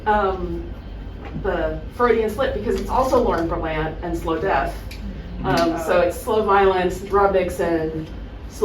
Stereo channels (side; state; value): both; identical; correlation 1.00